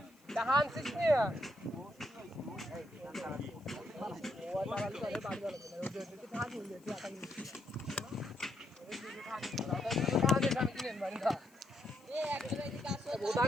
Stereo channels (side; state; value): left; noise; hiss, 30 dB below the sound